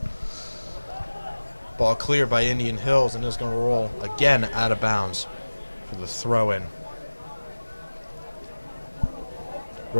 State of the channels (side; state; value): both; inverted; correlation -1.00